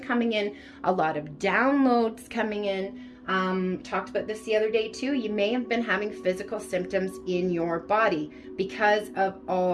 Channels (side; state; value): both; identical; correlation 1.00